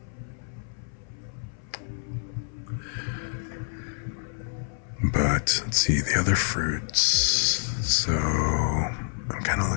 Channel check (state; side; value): silent; right; 60 dB below the other